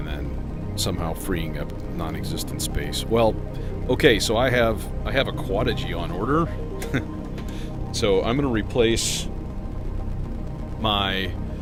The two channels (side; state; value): both; identical; correlation 1.00